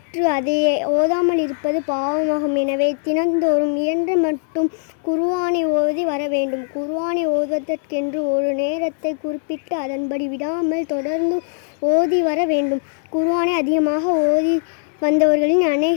அதை ஓதாமல் இருப்பது பாவமாகும். எனவே தினந்தோறும் இயன்ற மட்டும் குர்ஆனை ஓதி வர வேண்டும். குர்ஆனை ஓதுவதற்கென்று ஒரு நேரத்தை குறிப்பிட்டு அதன்படி விடாமல் தொடர்ந்து ஓதி வர வேண்டும். குர்ஆனை அதிகமாக ஓதி வந்தவர்களின்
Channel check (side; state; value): right; silent; 66 dB below the other